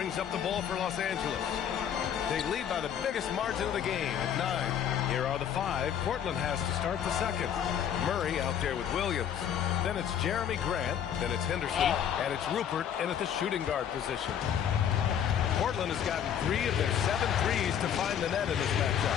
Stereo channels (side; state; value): right; quieter; 9.0 dB